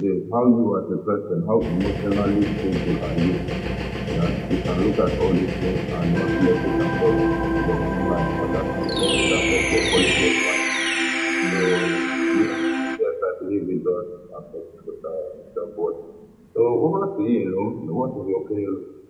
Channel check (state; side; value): identical; both; correlation 1.00